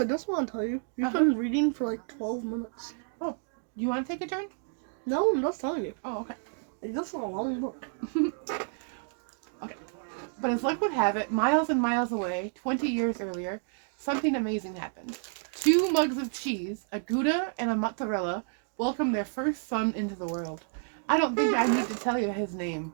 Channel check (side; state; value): left; silent; 58 dB below the other